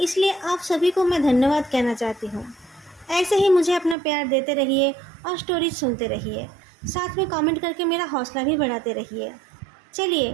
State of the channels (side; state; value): left; drops out; at 4.0 s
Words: आप सभी को मैं धन्यवाद कहना चाहती हूँ। ऐसे ही मुझे अपना प्यार देते रहिए और स्टोरीज सुनते रहिए, साथ में कमेंट करके मेरा हौसला भी बढ़ाते रहिए। चलिए